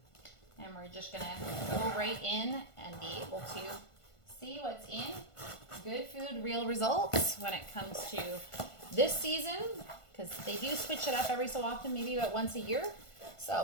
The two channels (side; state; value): right; late; 1.5 ms